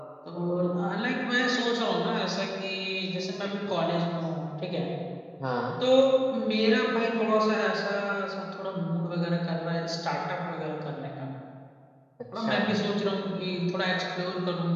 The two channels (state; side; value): identical; both; correlation 1.00